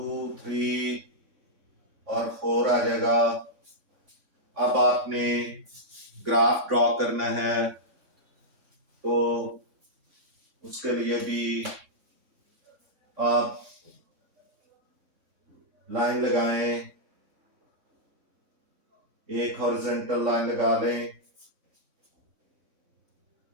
3 और 4 आ जाएगा। अब आपने ग्राफ ड्रॉ करना है, तो उसके लिए भी आप लाइन लगाएं, एक हॉरिजॉन्टल लाइन लगा लें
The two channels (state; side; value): late; left; 3.6 ms